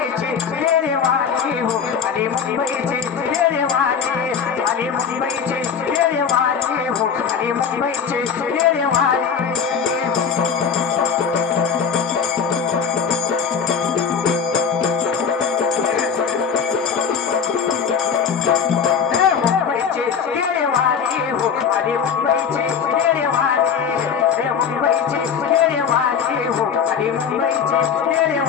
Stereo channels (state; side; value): quieter; right; 6.8 dB